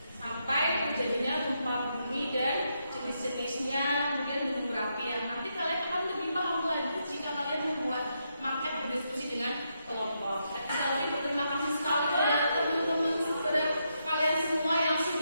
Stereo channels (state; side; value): inverted; both; correlation -0.81